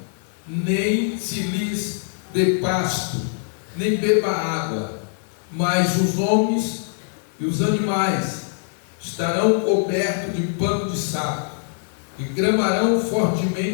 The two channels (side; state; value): right; silent; digital silence